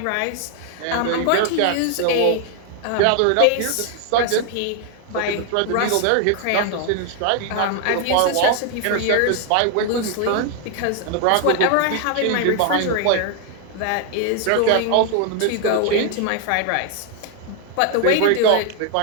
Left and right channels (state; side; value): different; both; correlation 0.00